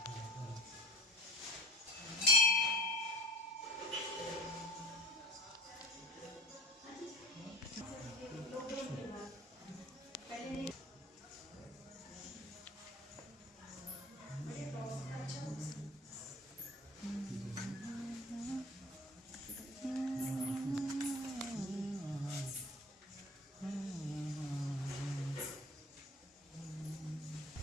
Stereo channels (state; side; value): normal; both; correlation 0.40